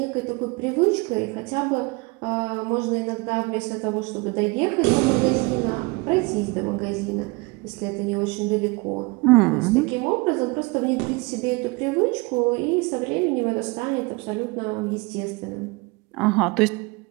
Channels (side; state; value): left; quieter; 26.5 dB